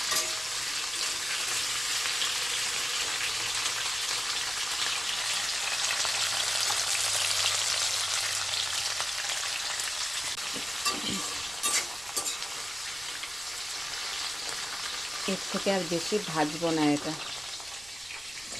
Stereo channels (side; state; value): right; noise; rumble, 24 dB below the sound